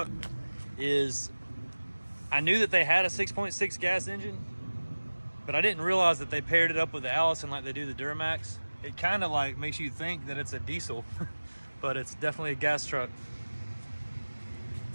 is I knew that they had a 6.6 gas engine, but I didn't realize that they paired it up with the Allison like they do the Duramax. It kind of like makes you think that it's a diesel, but it's definitely a gas truck.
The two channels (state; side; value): inverted; both; correlation -1.00